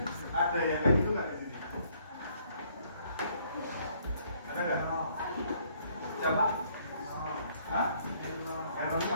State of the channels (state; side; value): inverted; both; correlation -0.65